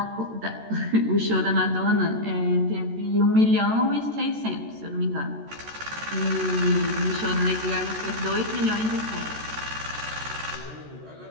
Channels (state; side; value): late; left; 14 ms